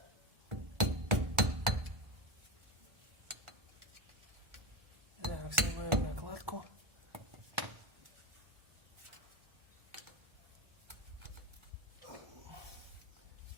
Так, снимаем накладку.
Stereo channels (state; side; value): late; left; 1.4 ms